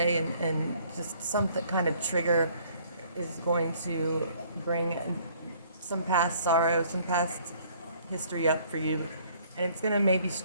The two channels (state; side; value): inverted; both; correlation -0.59